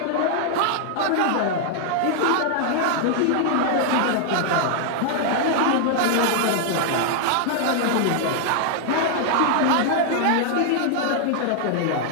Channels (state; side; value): different; both; correlation -0.01